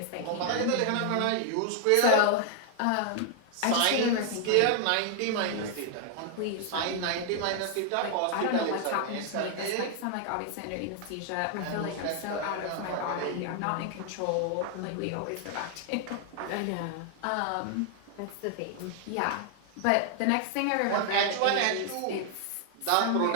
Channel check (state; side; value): different; both; correlation 0.00